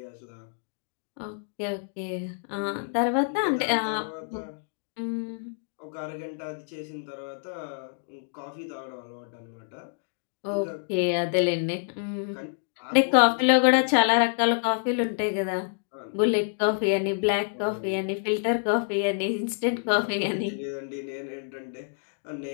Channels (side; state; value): right; silent; digital silence